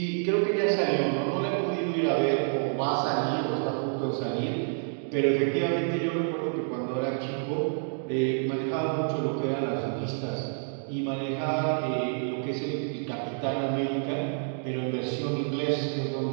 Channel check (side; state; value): left; silent; 59 dB below the other